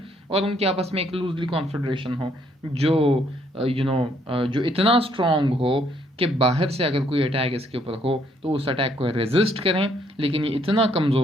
और उनके आपस में एक लूजली कॉन्फेडरेशन हो जो इतना स्ट्रॉन्ग हो कि बाहर से अगर कोई अटैक इसके ऊपर हो तो उस अटैक को रेजिस्ट करें, लेकिन ये इतना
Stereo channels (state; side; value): normal; both; correlation 0.68